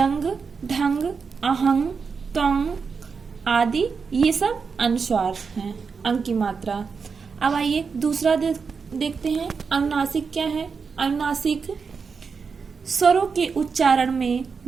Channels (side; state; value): left; quieter; 5.4 dB